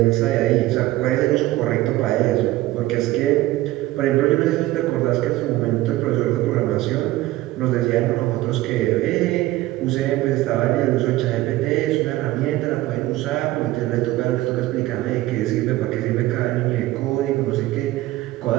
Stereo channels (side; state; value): left; quieter; 16.9 dB